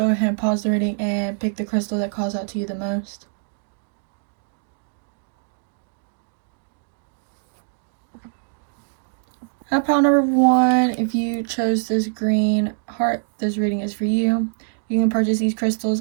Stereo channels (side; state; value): left; silent; digital silence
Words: ahead and pause the reading and pick the crystal that calls out to you the most. At pile number 1, if you chose this green heart, this reading is for you. You can purchase these crystals